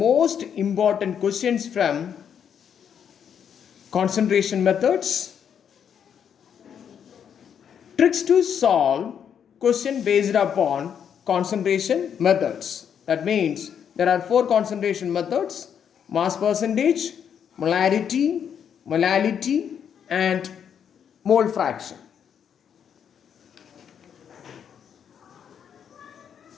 important questions from concentration methods, tricks to solve question based upon concentration methods. That means there are four concentration methods: mass percentage, molarity, molality, and mole fraction.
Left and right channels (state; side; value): quieter; right; 8.1 dB